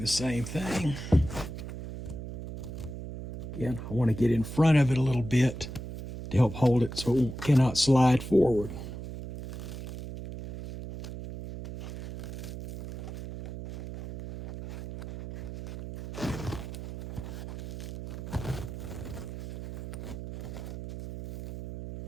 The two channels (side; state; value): right; noise; hum, 9 dB below the sound